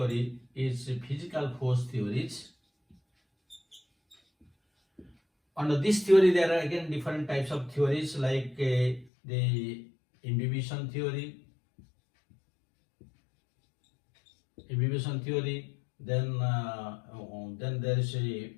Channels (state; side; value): drops out; right; at 9.1 s